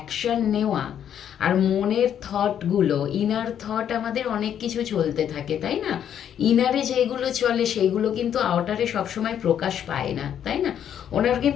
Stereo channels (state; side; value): quieter; right; 9.4 dB